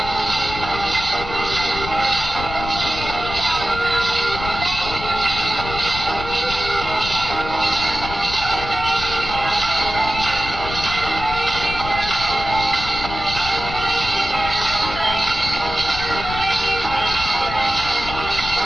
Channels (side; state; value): left; noise; rumble, 9 dB below the sound